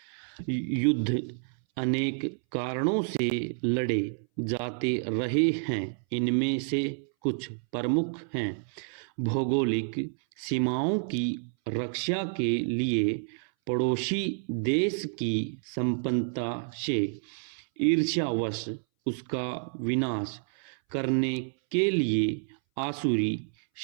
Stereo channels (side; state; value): left; silent; 58 dB below the other